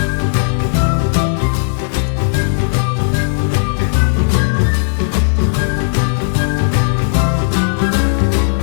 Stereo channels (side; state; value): right; silent; digital silence